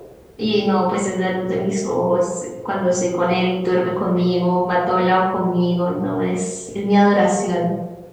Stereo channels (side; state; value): both; identical; correlation 1.00